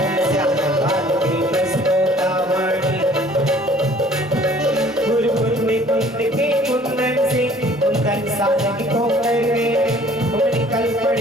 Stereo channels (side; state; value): both; normal; correlation 0.54